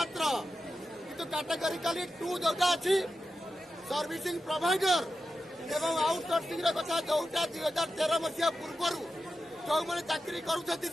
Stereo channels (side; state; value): both; normal; correlation 0.91